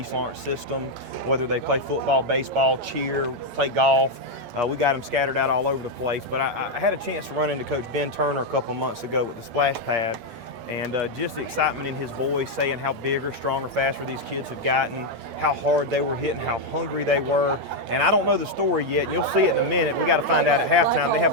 Lawrence system, whether they play football, baseball, cheer, play golf. We got them scattered out all over the place. But I had a chance to run into Coach Ben Turner a couple of months ago with the splash pad, and just the excitement in his voice, saying how bigger, stronger, faster these kids have gotten, how hard they were hitting, how hungry they were. And I don't know the story yet, and you'll see it in a minute. We got to find out at halftime. They have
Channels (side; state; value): left; late; 10 ms